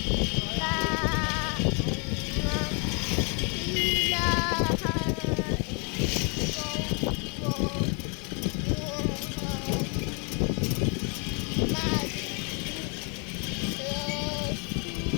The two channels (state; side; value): quieter; right; 36.3 dB